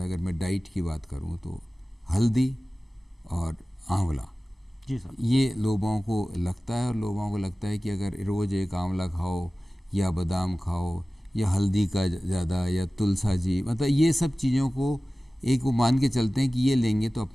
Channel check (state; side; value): normal; both; correlation 0.97